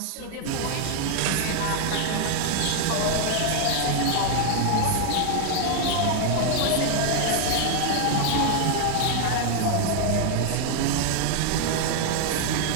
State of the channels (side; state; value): both; different; correlation 0.00